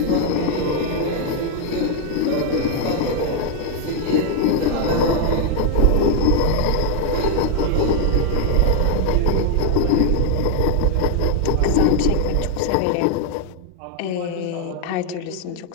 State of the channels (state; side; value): different; both; correlation 0.00